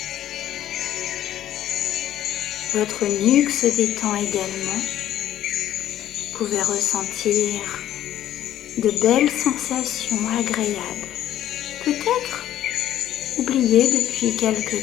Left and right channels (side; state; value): right; quieter; 12.1 dB